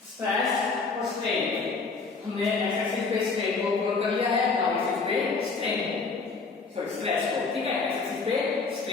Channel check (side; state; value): right; quieter; 4.4 dB